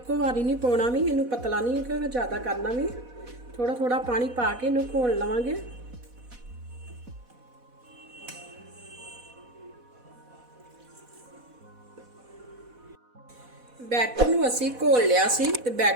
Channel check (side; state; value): left; late; 4.1 ms